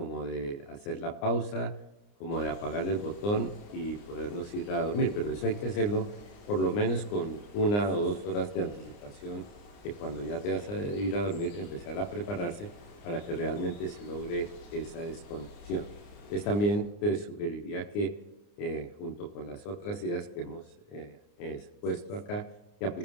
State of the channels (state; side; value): late; right; 29 ms